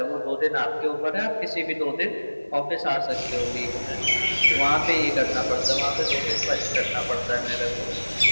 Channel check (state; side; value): inverted; both; correlation -1.00